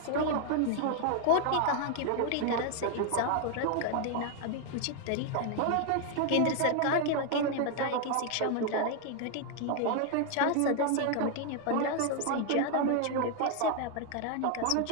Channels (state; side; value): different; both; correlation 0.00